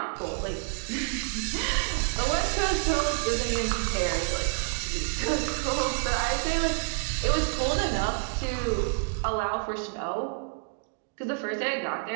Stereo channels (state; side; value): silent; left; 59 dB below the other